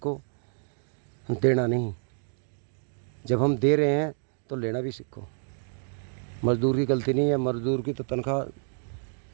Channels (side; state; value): left; silent; digital silence